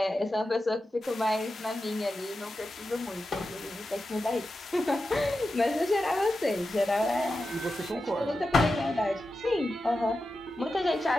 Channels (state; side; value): normal; both; correlation 0.91